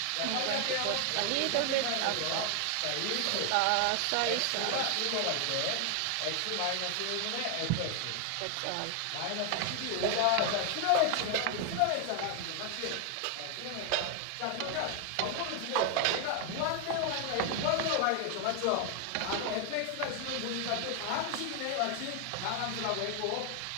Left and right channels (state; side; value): different; both; correlation 0.00